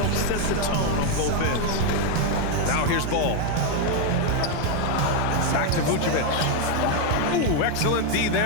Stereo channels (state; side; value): different; both; correlation 0.01